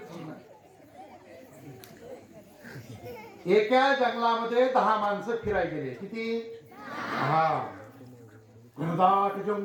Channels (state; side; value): identical; both; correlation 1.00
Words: एका जंगलामध्ये 10 माणसं फिरायला गेले. किती? 10. घनदाट